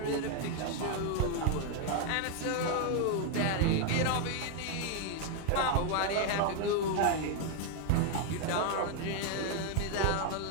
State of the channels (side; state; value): both; different; correlation 0.00